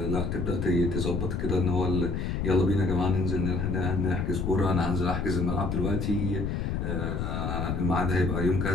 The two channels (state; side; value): noise; left; rumble, 1 dB below the sound